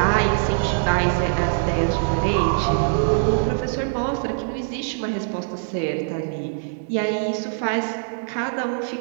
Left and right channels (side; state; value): left; silent; 64 dB below the other